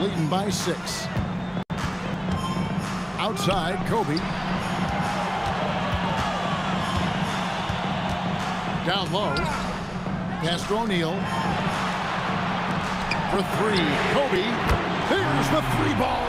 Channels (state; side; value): identical; both; correlation 1.00